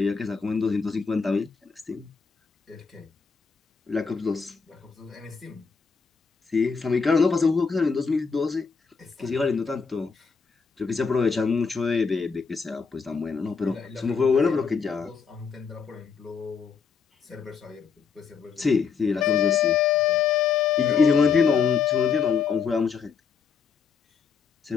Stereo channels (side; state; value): right; quieter; 5.8 dB